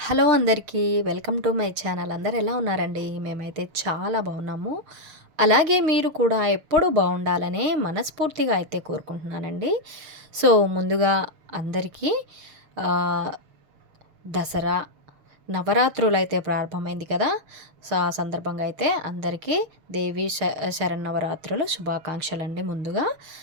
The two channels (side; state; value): left; late; 6.4 ms